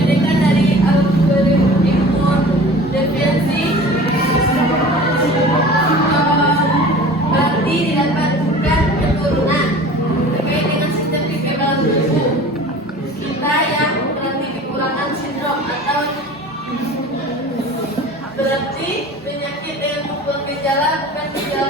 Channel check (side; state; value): both; normal; correlation 0.41